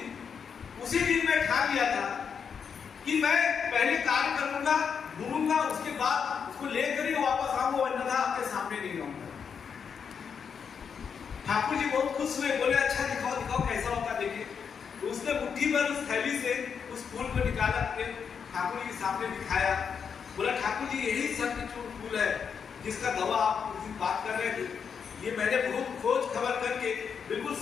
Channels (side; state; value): right; quieter; 6.7 dB